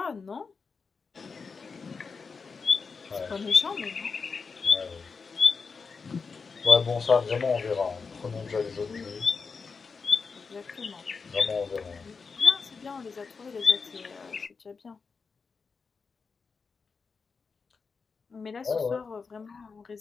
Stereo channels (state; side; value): quieter; right; 5.0 dB